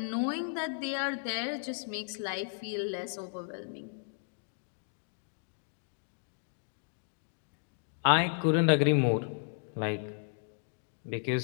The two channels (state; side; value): silent; right; digital silence